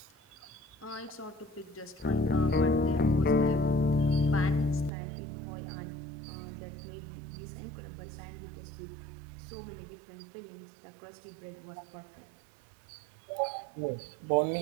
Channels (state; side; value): drops out; left; at 4.9 s